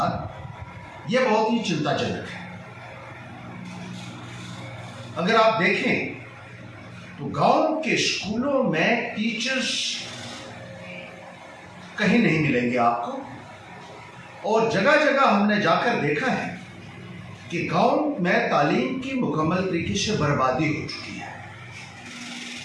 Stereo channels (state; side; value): identical; both; correlation 1.00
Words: यह बहुत ही चिंताजनक है। अगर आप देखें तो गांव के स्कूलों में टीचर्स कहीं नहीं मिलेंगे आपको, और जगह जगह हमने जाकर देखा है कि गांव में तालीम की मुकम्मल तरीके से बर्बादी हो चुकी है।